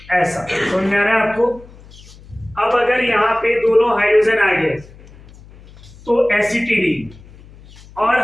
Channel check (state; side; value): noise; left; hum, 22 dB below the sound